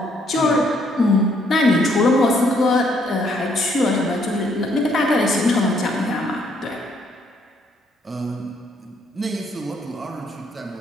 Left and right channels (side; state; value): both; normal; correlation 0.69